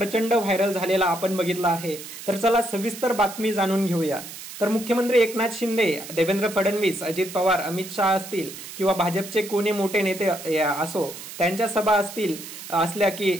व्हायरल झालेला आपण बघितला आहे। तर चला सविस्तर बातमी जाणून घेऊया। तर मुख्यमंत्री एकनाथ शिंदे, देवेंद्र फडणवीस, अजित पवार, अमित शहा असतील किंवा भाजपचे कोणी मोठे नेते असो, त्यांच्या सभा असल्या की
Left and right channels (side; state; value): right; noise; hiss, 12 dB below the sound